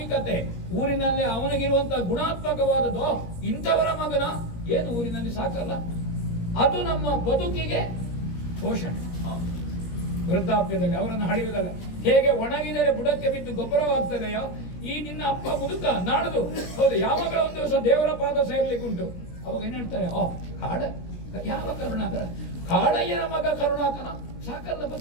ಊರಿನಲ್ಲಿ ಅವನಿಗಿರುವಂತಹ ಗುಣಾತ್ಮಕವಾದದ್ದು, ಇಂಥವರ ಮಗನ ಏನು ಊರಿನಲ್ಲಿ ಸಾಕಲ್ಲ, ಅದು ನಮ್ಮ ಬದುಕಿಗೆ ಪೋಷಣೆ. ವೃದ್ಧಾಪ್ಯದಲ್ಲಿ ಅವರನ್ನು ಹಳೆಯುವುದಲ್ಲ. ಹೇಗೆ ಒಣಗಿದರೆ ಬುಡಕ್ಕೆ ಬಿದ್ದು ಗೊಬ್ಬರವಾಗ್ತದೆಯೋ, ಈ ನಿನ್ನ ಅಪ್ಪ ಮುದುಕ ನಾಳದು ಹೌದು ಯಾವಾಗಲೂ ಒಂದು ದಿವಸ ದೇವರ ಪಾದ ಸೇರ್ಲಿಕ್ಕುಂಟು. ಅವಾಗ ಏನ್ ಹೇಳ್ತಾರೆ, ಕಾಡ ಯಾವ ಕರುಣಾಕರ, ಕಾಳಯ್ಯನ ಮಗ ಕರುಣಾಕರ ಸಾಕಲ್ಲ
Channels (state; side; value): late; right; 17 ms